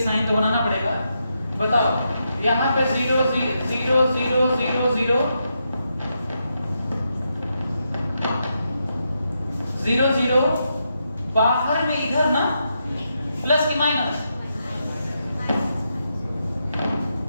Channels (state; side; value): inverted; both; correlation -0.83